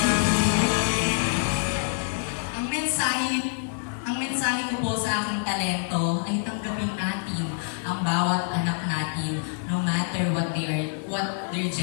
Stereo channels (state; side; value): silent; right; digital silence